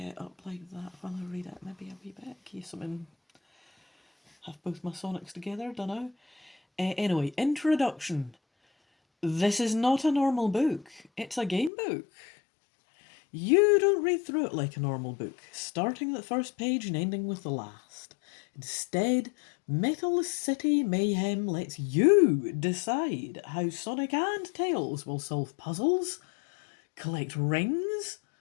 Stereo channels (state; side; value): drops out; right; at 11.7 s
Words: up like that while I read it. Maybe a wee bit, in case I'm have both my Sonics together, dunno. Anyway, introduction. This is not a normal book. It's a game book. You don't read through it like a normal book, starting at the first page and ending with the last. Instead, Metal City Mayhem lets you decide how Sonic and Tails will solve puzzles, collect rings.